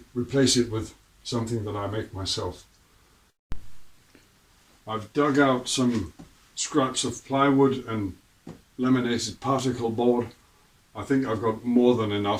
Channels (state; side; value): identical; both; correlation 1.00